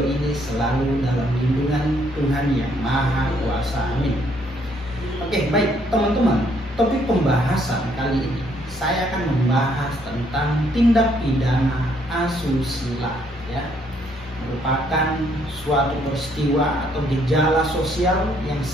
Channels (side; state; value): both; normal; correlation 0.68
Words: ini selalu dalam lindungan Tuhan Yang Maha Kuasa. Amin. Oke, baik teman-teman. Topik pembahasan kali ini saya akan membahas tentang tindak pidana asusila, ya. Merupakan suatu peristiwa atau gejala sosial yang